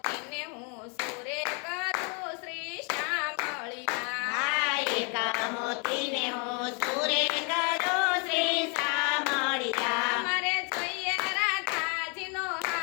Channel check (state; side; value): quieter; right; 36.2 dB